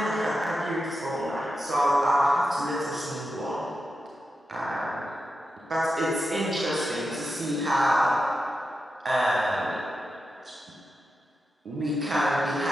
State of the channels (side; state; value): both; normal; correlation 0.89